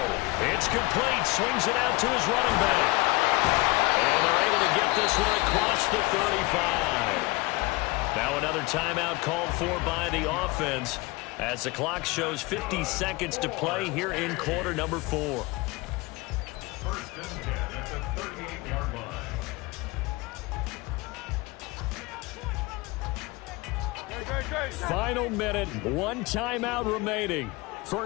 It's complete. Swings it out to his running back. And they're able to get this one across the 35. Now another timeout called for by the offense as the clock shows 50 seconds to play here in quarter number 4. 1st and 10 at the 38-yard line. Final minute, 1 timeout remaining.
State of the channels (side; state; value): right; quieter; 22.9 dB